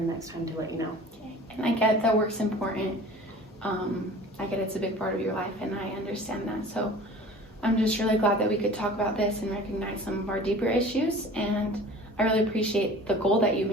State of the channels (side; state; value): both; normal; correlation 0.43